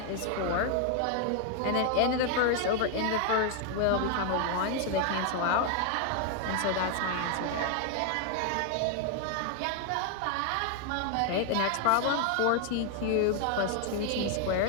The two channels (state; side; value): different; both; correlation 0.00